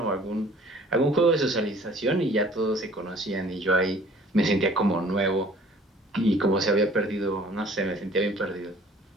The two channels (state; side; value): normal; both; correlation 0.52